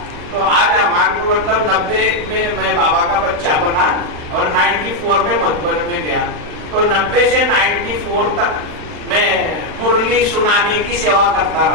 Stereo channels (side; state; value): left; late; 39 ms